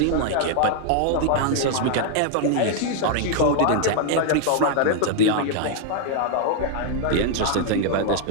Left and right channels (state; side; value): different; both; correlation 0.00